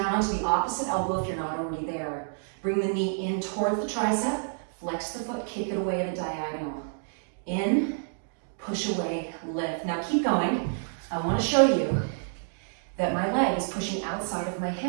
onto the opposite elbow if you're not already there. Bring the knee in towards the tricep. Flex the foot, kick it away at a diagonal. In, push away, lift. Now keep going. I want to show you that my leg is pushing outside of my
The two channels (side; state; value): left; silent; digital silence